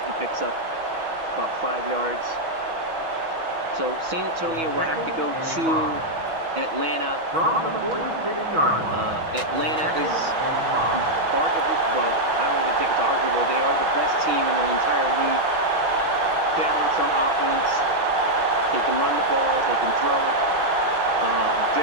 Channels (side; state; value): left; late; 6.2 ms